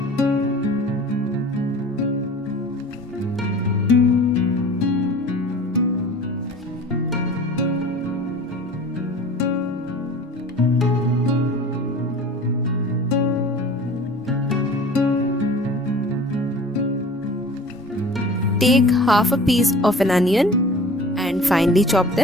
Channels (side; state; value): both; normal; correlation 0.42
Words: Take half a piece of an onion and finely chop